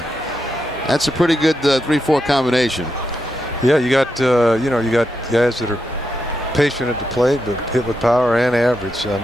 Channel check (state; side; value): normal; both; correlation 0.84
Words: That's a pretty good 3-4 combination. Yeah, you got you got guys that are patient at the plate, but hit with power and average. I